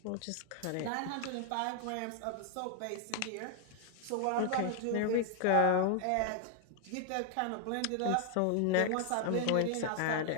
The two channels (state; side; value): different; both; correlation 0.00